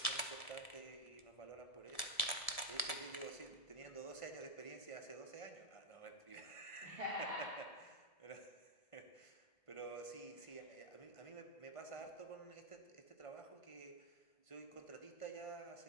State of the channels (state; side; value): late; right; 1.7 ms